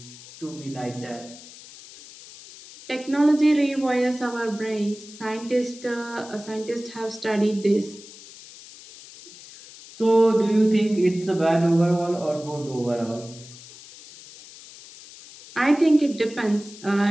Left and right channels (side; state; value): left; noise; hiss, 18 dB below the sound